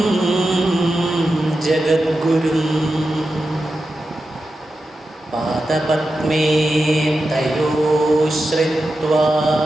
ജഗദ്ഗുരും പാദപത്മേ തയോ ശ്രിത്വാ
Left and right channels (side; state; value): both; normal; correlation 0.90